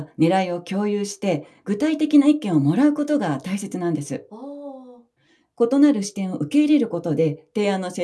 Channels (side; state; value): both; identical; correlation 1.00